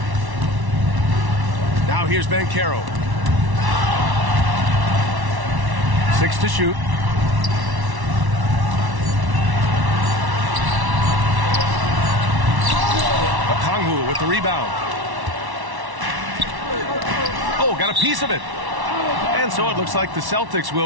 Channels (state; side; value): late; left; 1.1 ms